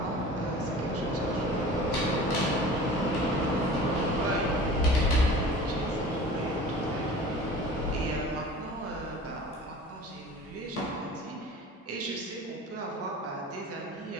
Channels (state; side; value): normal; both; correlation 0.40